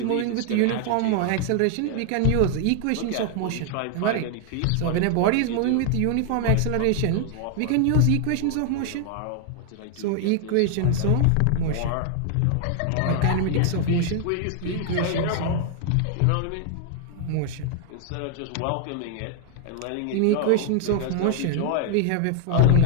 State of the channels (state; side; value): different; both; correlation 0.00